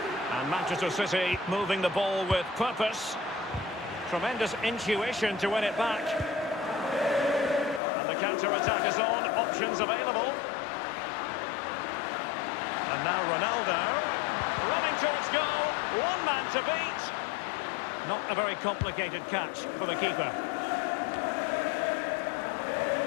And Manchester City moving the ball with purpose. Tremendous intuition to win it back. And the counter-attack is on. Options available. And now Ronaldo. Running towards goal. One man to beat. Not a very complicated catch for the keeper.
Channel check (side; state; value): right; drops out; at 7.8 s